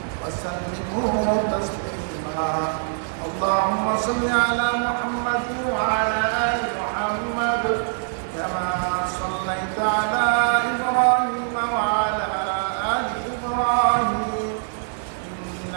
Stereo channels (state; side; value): silent; left; digital silence